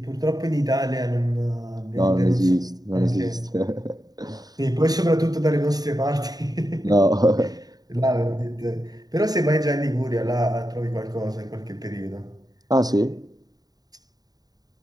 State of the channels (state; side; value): late; left; 0.18 ms